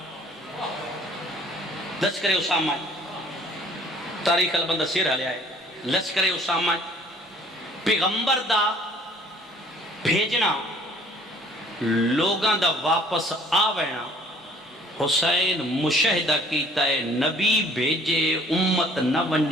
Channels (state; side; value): normal; both; correlation 0.56